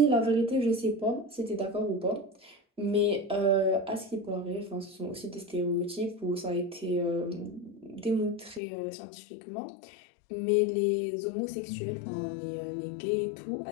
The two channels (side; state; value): right; drops out; at 8.6 s